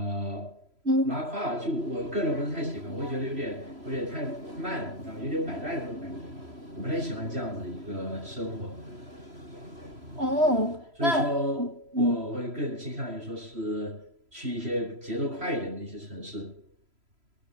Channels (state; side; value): late; left; 3.0 ms